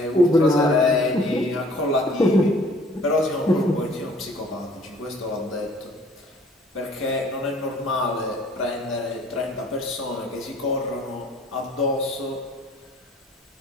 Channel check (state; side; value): normal; both; correlation 0.55